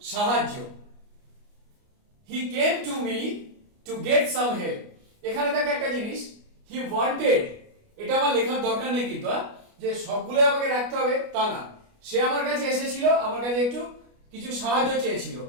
সাহায্য। he came to me to get some help, এখানে দেখো একটা জিনিস, he wanted, এটা আমার লেখার দরকার নেই কিন্তু যে সবগুলো আমাকে রাখতে হবে তা না, সে আমার কাছে এসেছিল, আমার কাছে একটু কিছু সাহায্য চেয়েছিল,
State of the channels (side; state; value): left; late; 29 ms